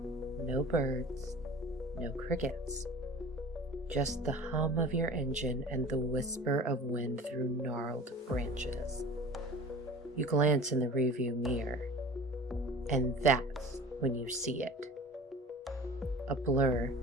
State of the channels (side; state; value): both; normal; correlation 0.40